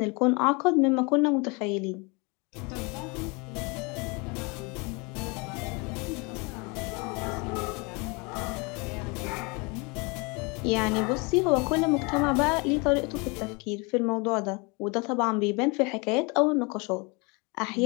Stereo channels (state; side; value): quieter; right; 29.4 dB